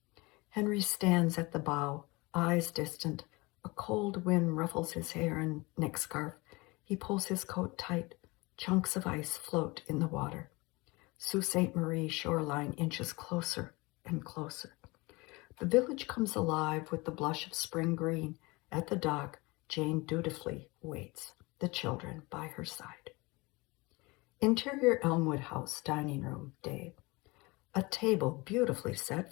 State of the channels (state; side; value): quieter; right; 24.3 dB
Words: Henry stands at the bow, eyes distant. A cold wind ruffles his hair and neck scarf. He pulls his coat tight. Chunks of ice float in the water. Sault Ste. Marie shoreline inches closer and closer. The village comes alive with the blush of spring green. At the dock, Jane dutifully waits, the children by her side. Interior Elmwood House dining room day. A table beautifully